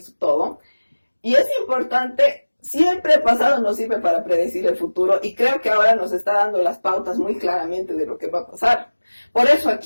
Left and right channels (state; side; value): inverted; both; correlation -1.00